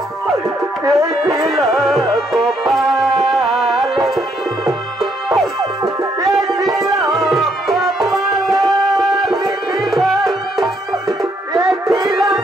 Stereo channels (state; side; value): normal; both; correlation 0.72